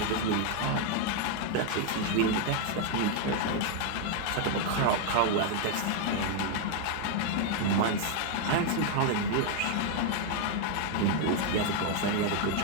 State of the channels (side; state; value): both; different; correlation 0.01